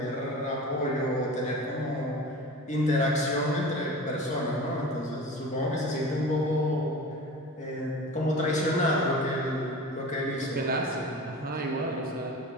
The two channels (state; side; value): normal; both; correlation 0.35